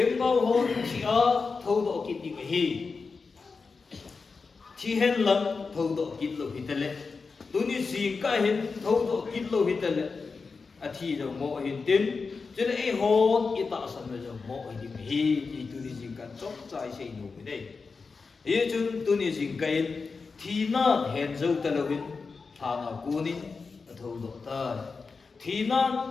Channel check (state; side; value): quieter; right; 4.6 dB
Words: bao hồn thi ở thâu tổ cái đi cái thi hen lắm thâu tổ cái lô hít lên tôi đi dừng cái hen thâu tổ cái lô hít lên à thi rồi một hiện tiếng chứ là ít hồn ít tạo sản rồi một thì đi cái thì tôi đi dừng cái chốt trái xây nổ cái đấy ý chúng tôi đi dừng cái thì na hẹn dấu ta lâu hin thà na cuốn thâu độ ta thì na